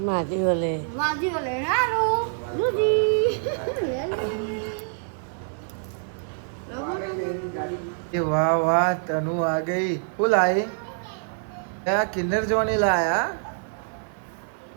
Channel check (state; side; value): silent; left; 60 dB below the other